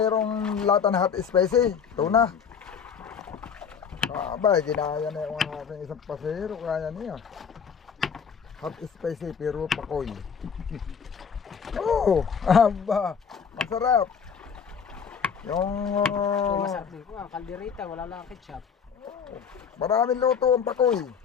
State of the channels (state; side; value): quieter; right; 6.8 dB